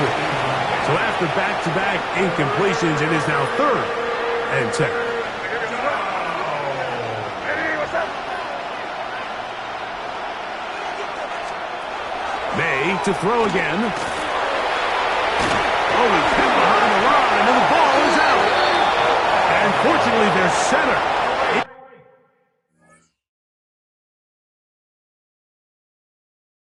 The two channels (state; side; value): identical; both; correlation 1.00